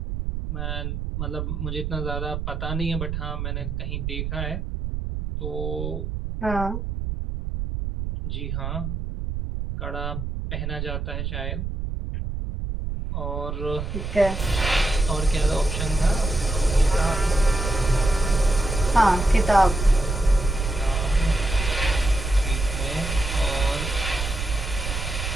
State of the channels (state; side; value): noise; right; rumble, 4 dB below the sound